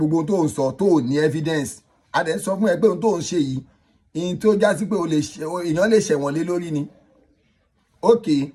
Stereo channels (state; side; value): identical; both; correlation 1.00